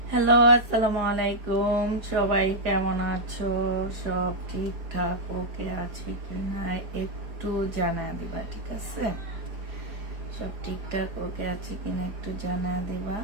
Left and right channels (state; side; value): late; left; 4.9 ms